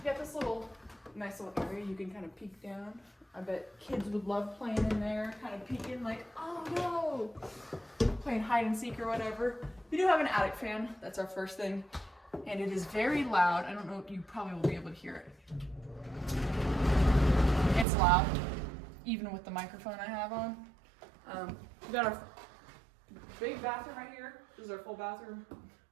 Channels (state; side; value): drops out; left; at 17.9 s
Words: got this little nice little area you can kind of peek down. I bet kids would love playing in there, kind of peeking like, oh no, playing hide and seek or whatever. We do have an attic fan. That's our first thing. And it is very loud. I don't know, you probably will be able to hear it. It's loud, even with the microphone I have on. We got our big bathroom right here. This is our full bathroom.